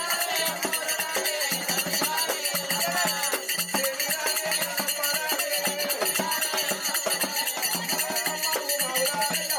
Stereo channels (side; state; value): both; identical; correlation 1.00